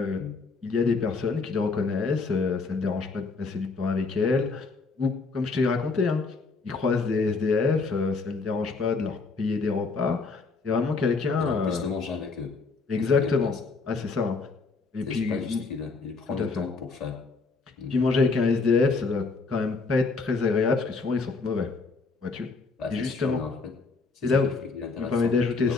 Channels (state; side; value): quieter; right; 4.2 dB